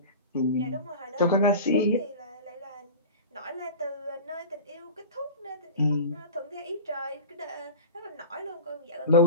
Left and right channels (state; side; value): inverted; both; correlation -0.34